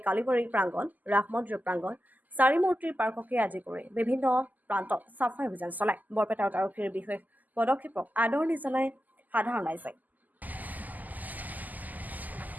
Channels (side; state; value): left; late; 0.082 ms